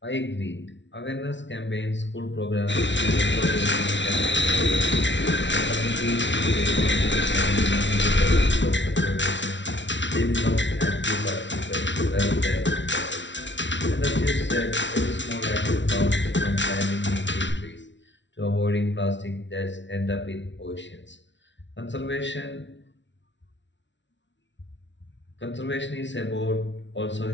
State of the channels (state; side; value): late; right; 0.53 ms